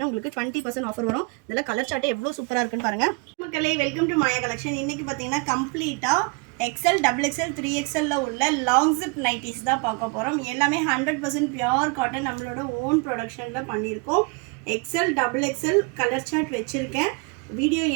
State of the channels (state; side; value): quieter; left; 31.4 dB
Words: உங்களுக்கு 20% ஆஃபர் வரும். இதில் கலர் சார்ட்டு எவ்வளோ சூப்பராக இருக்குன்னு பாருங்கள். மக்களே, வெல்கம் டு மாயா கலெக்ஷன். இன்றைக்கி பார்த்தீங்கன்னா கம்ப்ளீட்டாக XL, XXL, 3XL உள்ள லாங் ஜிப் நைட்டிஸ் தான் பார்க்க போகிறோம். எல்லாமே 100% பியூர் காட்டன் நம்மளோட ஓன் ப்ரொடக்ஷனில் பண்ணியிருக்கோம். XL, XXL கலர் சார்ட் வச்சுருக்கேன். வீடியோ